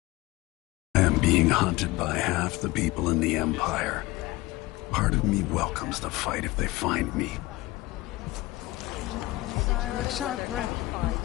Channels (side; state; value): right; quieter; 19.8 dB